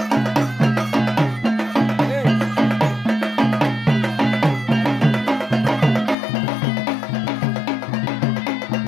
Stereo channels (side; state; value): right; drops out; at 6.2 s